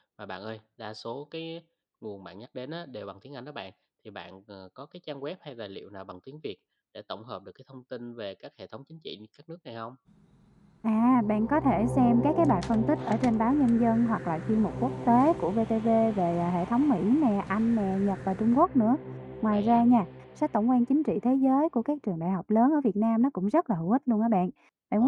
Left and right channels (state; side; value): identical; both; correlation 1.00